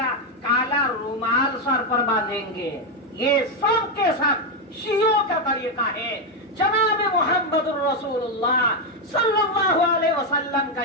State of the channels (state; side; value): normal; both; correlation 0.05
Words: کالا رومال سر پر باندھیں گے. یہ سب کے سب شیعوں کا طریقہ ہے. جناب محمد الرسول اللہ صلی اللہ علیہ وسلم کا